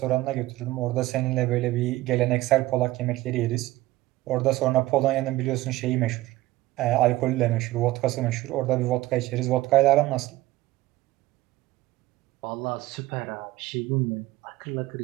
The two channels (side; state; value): left; quieter; 17.5 dB